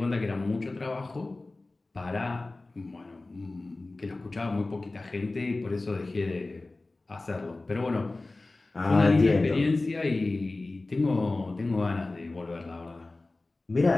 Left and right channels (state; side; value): quieter; right; 3.1 dB